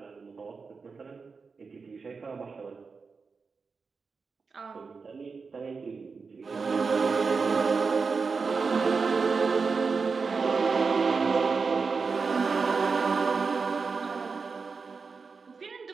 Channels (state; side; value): quieter; left; 4.8 dB